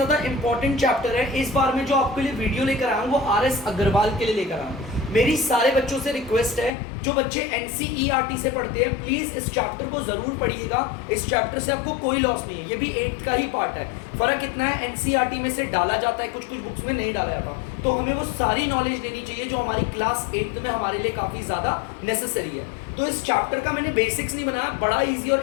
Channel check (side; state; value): right; drops out; at 6.7 s